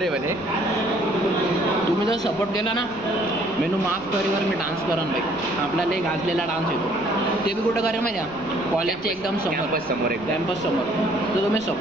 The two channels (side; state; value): left; noise; rumble, 20 dB below the sound